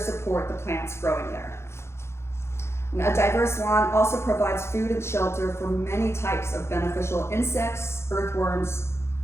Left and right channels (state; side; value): late; right; 0.13 ms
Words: the plants growing there. And a diverse lawn also provides food and shelter for many types of beneficial insects, earthworms,